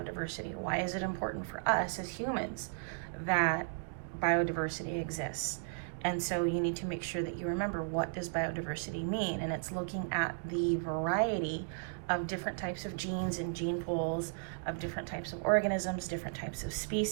Why is it important for us as humans that biodiversity exists? And so you need to make sure that you remember, what does biodiversity mean? And it's looking at the variety of different types of genes and gene pools of different types of organisms, different types of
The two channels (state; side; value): silent; left; digital silence